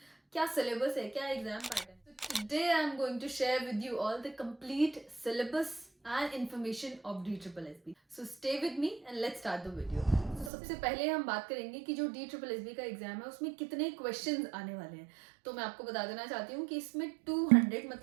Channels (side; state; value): left; drops out; at 10.5 s